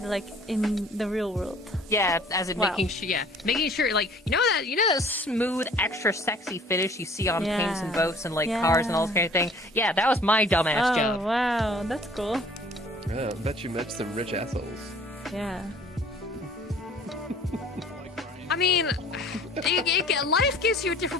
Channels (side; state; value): both; normal; correlation 0.53